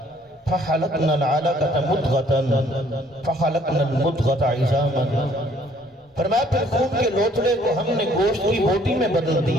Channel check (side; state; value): both; normal; correlation 0.61